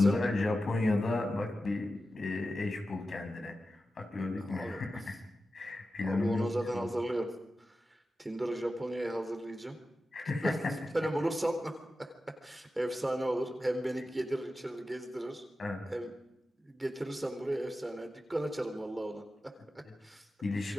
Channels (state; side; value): normal; both; correlation 0.92